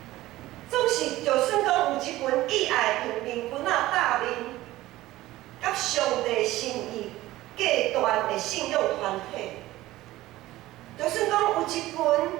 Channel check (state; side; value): quieter; left; 16.7 dB